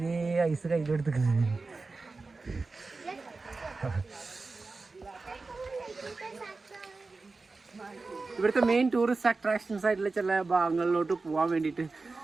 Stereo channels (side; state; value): left; quieter; 3.8 dB